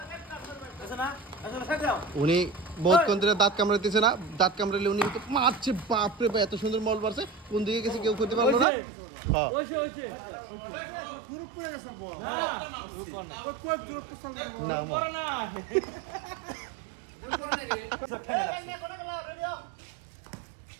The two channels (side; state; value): left; drops out; at 8.7 s